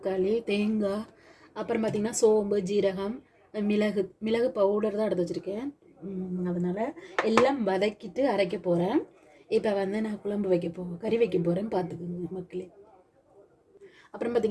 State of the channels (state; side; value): identical; both; correlation 1.00